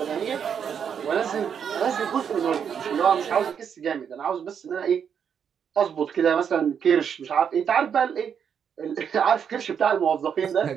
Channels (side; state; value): left; quieter; 7.6 dB